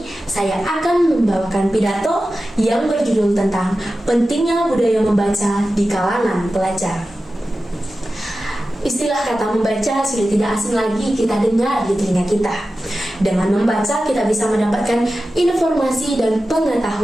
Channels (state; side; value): normal; both; correlation 0.94